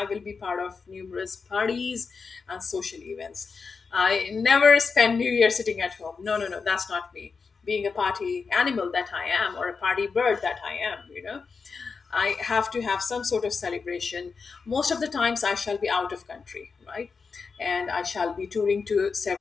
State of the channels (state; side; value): quieter; right; 5.0 dB